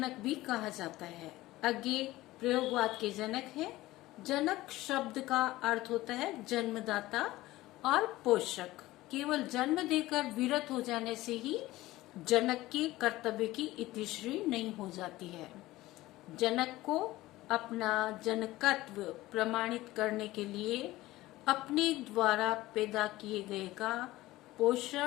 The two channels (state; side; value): quieter; right; 17.6 dB